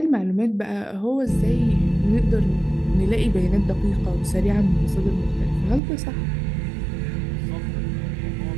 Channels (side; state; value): left; drops out; at 5.8 s